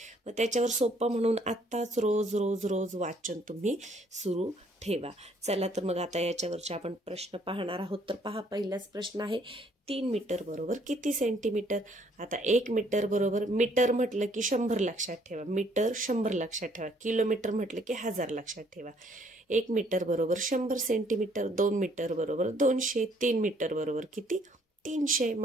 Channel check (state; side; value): normal; both; correlation 0.64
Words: मग त्याच्यावर सोपं म्हणून आत्ताच रोज रोज रोज वाचन तुम्ही सुरू ठेवा। चला तर मग आता याच्यावरचे आपण प्रश्न पाहणार आहोत। तर पहा, पहिलाच प्रश्न आहे, 3 मीटर बरोबर किती सेंटीमीटर? आता 1 मीटर बरोबर, मीटर म्हटलं की 100 लक्षात ठेवा, मीटर 100 लक्षात ठेवा, किलोमीटर म्हटलं की 1000 लक्षात ठेवा। 1 मीटर बरोबर 100 सेंटीमीटर, 2 मीटर बरोबर 200, 3 मीटर बरोबर किती? 300।